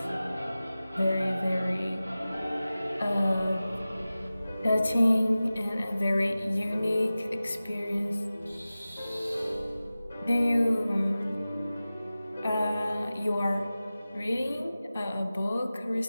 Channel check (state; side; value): inverted; both; correlation -0.96